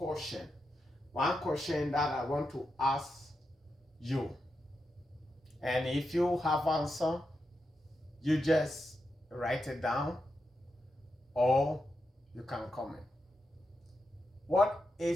One question that I want to ask you. And if you have answer, you just write it down or you can comment. What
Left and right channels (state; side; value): normal; both; correlation 0.86